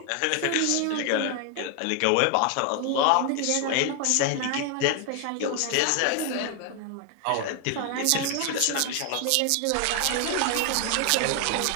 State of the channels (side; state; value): both; different; correlation 0.00